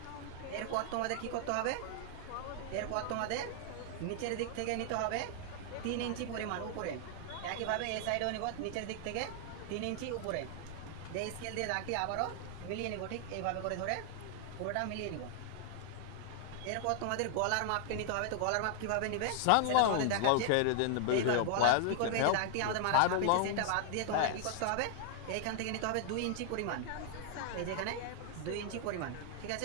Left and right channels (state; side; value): different; both; correlation 0.00